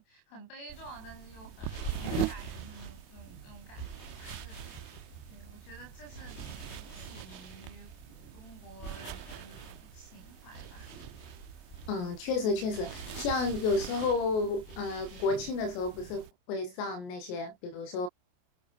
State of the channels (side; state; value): right; late; 28 ms